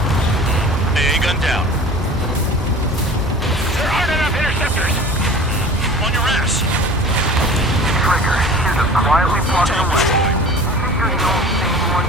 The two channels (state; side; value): normal; both; correlation 0.41